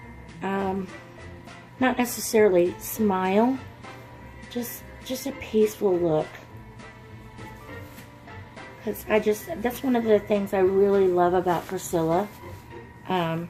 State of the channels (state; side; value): identical; both; correlation 1.00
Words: not necessarily smile, just a peaceful look. Because that's one of the things I really love about Priscilla.